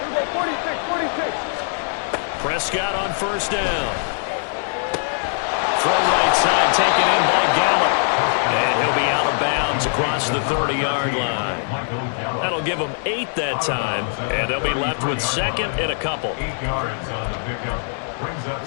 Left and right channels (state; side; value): silent; right; 64 dB below the other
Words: we go, 46. Prescott on 1st down. Throw right side, taken in by Gallup. And he'll be out of bounds across the 30-yard line. That'll give them 8 that time, and they'll be left with 2nd and a couple. 8 yards on the pickup. Brings up